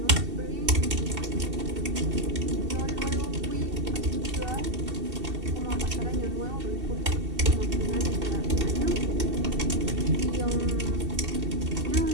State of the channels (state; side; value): late; left; 2.7 ms